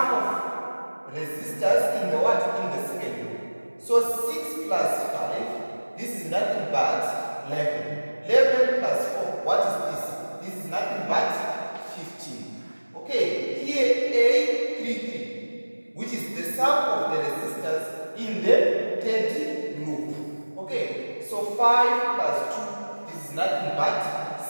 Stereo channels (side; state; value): both; inverted; correlation -1.00